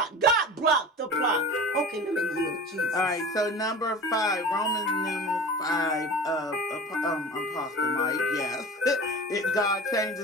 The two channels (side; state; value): both; normal; correlation 0.35